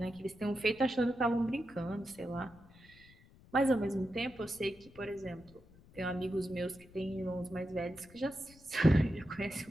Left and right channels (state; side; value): noise; left; rumble, 24 dB below the sound